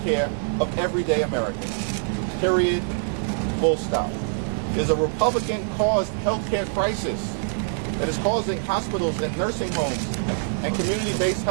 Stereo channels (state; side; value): silent; left; 59 dB below the other